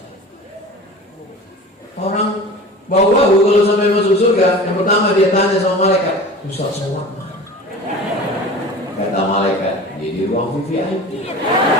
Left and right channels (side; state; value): both; normal; correlation 0.37